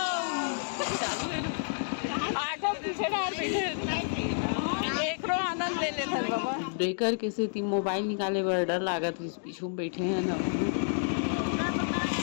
ऑटो पीछे डाल बैठे एक रो आनंद ले लेते बाबा। ब्रेकर के से मोबाइल निकाले बर डर लागत है, पीछू में बैठे हैं ना।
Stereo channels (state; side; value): silent; right; digital silence